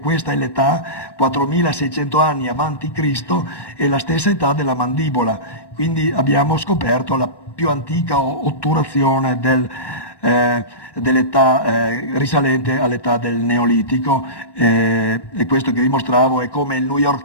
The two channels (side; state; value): right; late; 1.1 ms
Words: è l'età, 4600 anni avanti Cristo, è la stessa età della mandibola, quindi abbiamo scoperto la più antica otturazione dell'età risalente all'età del Neolitico, e questo che vi mostravo è come il New